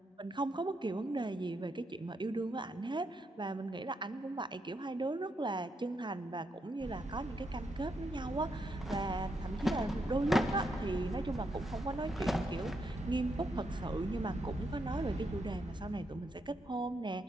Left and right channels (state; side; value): normal; both; correlation 0.80